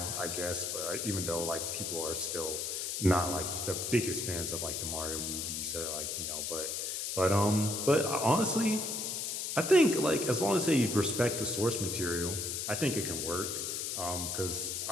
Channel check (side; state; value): left; noise; hiss, 2 dB below the sound